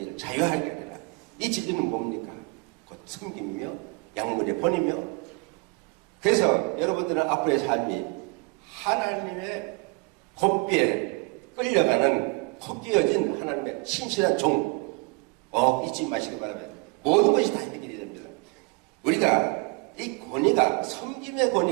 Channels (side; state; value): left; quieter; 29.1 dB